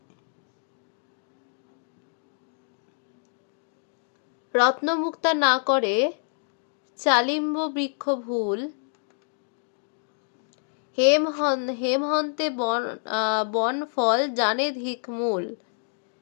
রত্নমুক্তা না করে চালিম্ব বৃক্ষ ভুল, হেমহন্তে বন ফল জানে ধিক মূল।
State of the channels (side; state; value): right; silent; digital silence